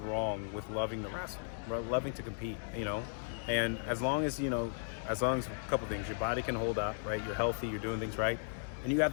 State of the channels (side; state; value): right; silent; digital silence